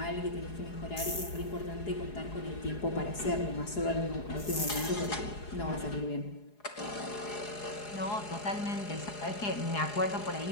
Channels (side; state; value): right; late; 4.8 ms